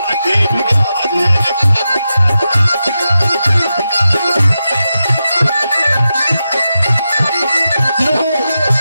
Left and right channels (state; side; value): inverted; both; correlation -0.90